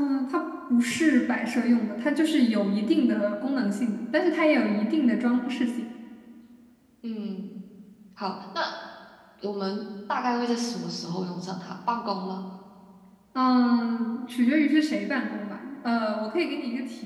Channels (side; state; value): both; identical; correlation 1.00